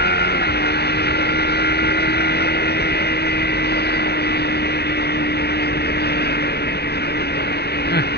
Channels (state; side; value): late; right; 0.48 ms